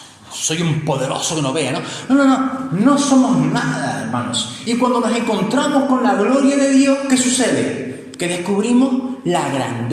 soy un poderoso que no vea, ¿no? No somos nada, hermanos. Y cuando nos encontramos con la gloria de Dios, ¿qué sucede? Que descubrimos la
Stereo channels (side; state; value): both; identical; correlation 1.00